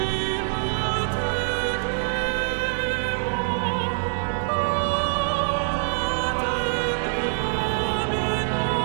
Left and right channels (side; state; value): left; silent; digital silence